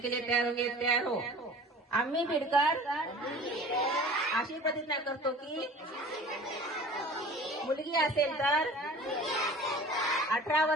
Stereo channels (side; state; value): both; normal; correlation 0.42